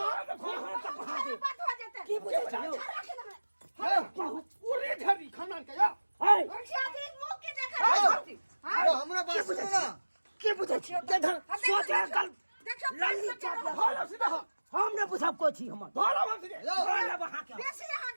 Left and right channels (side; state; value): both; inverted; correlation -1.00